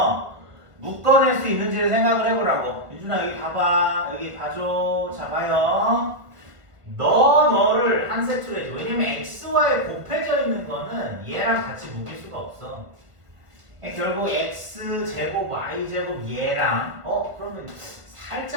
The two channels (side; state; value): left; late; 1.3 ms